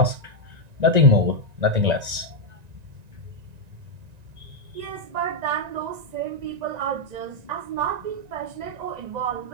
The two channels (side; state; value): left; late; 1.9 ms